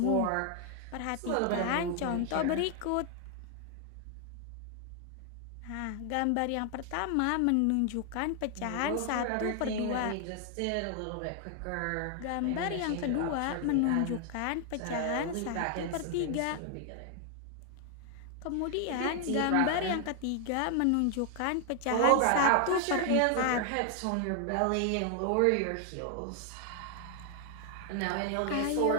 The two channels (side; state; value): both; different; correlation 0.00